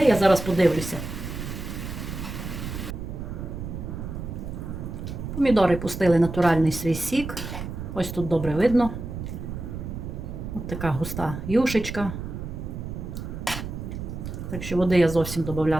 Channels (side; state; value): right; noise; rumble, 7 dB below the sound